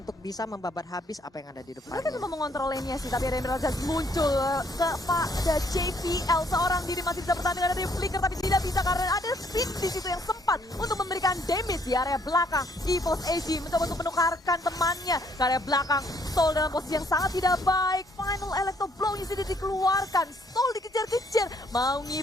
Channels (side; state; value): both; normal; correlation 0.67